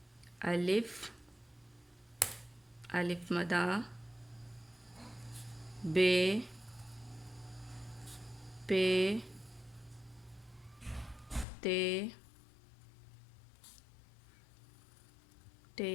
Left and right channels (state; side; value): drops out; right; at 11.5 s